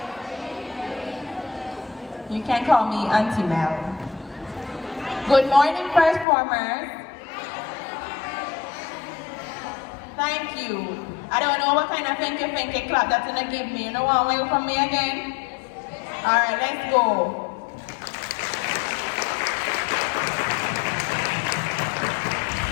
You can call me Auntie Mel. Good morning, first formers. Thank you. I don't know what kind of finky clap that's gonna give me. You know what way from me again? Alright, let's go.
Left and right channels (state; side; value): drops out; right; at 6.2 s